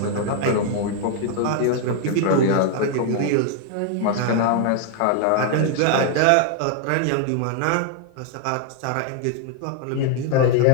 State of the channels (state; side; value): different; both; correlation 0.00